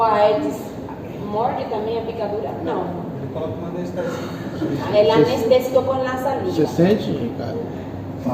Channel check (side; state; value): both; identical; correlation 1.00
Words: Aedes morde também a picadura? Não. Ele coloca uma anestesia. El anestésico con la Você saliva. sente, Ricardo?